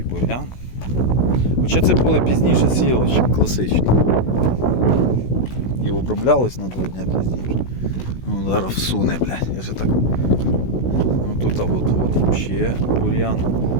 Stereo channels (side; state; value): right; late; 16 ms